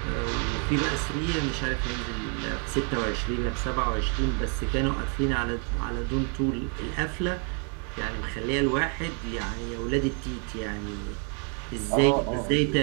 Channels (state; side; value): quieter; left; 39.8 dB